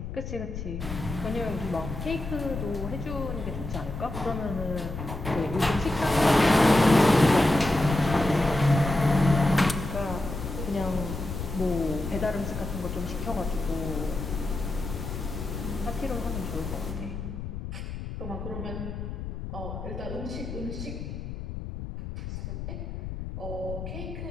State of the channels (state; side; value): noise; left; rumble, 7 dB below the sound